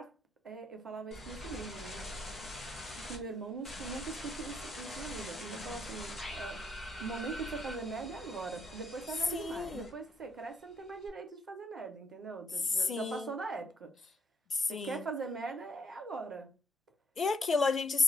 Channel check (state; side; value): normal; both; correlation 0.71